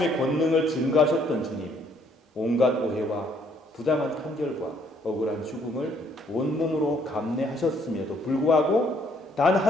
권능을 증거하셨던 주님, 온갖 오해와 부당한 판결과 억울한 죽음을 온몸으로 감내하셨음에도 불구하고 단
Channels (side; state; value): both; normal; correlation 0.66